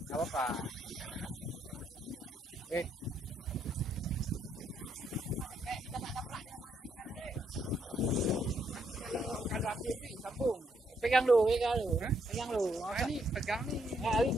Gak apa-apa. Oke. Kalau api ini sambung. Pegang dulu. Pegang dulu. Ini pegang nih. Nah, ini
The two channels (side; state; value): both; normal; correlation 0.74